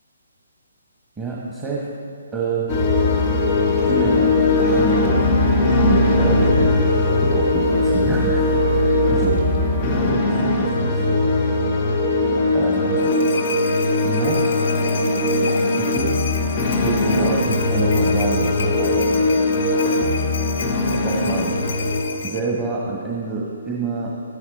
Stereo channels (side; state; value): both; inverted; correlation -0.52